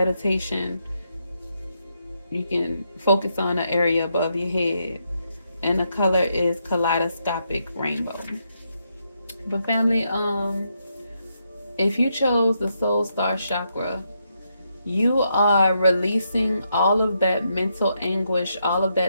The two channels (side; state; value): both; inverted; correlation -0.80